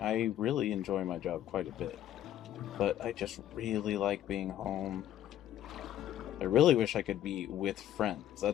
really enjoy my job quite a bit. But I just really like being home. I really wish I could be with friends.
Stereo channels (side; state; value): right; quieter; 11.9 dB